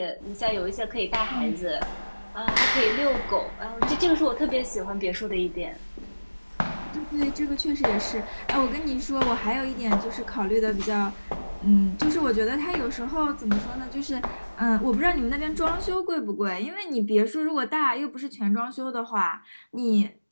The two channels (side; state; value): both; inverted; correlation -1.00